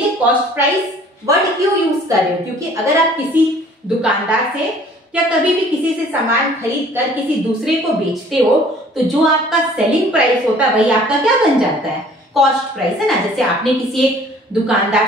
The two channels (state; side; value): normal; both; correlation 0.53